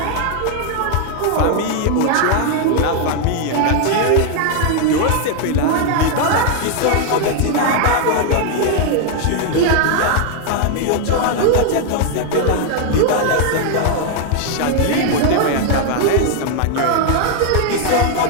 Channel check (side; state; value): both; different; correlation 0.00